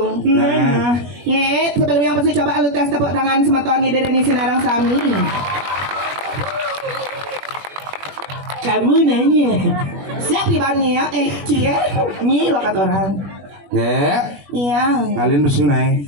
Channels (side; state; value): left; late; 21 ms